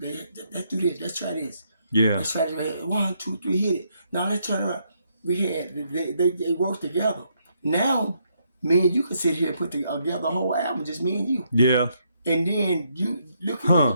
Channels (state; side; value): inverted; both; correlation -0.75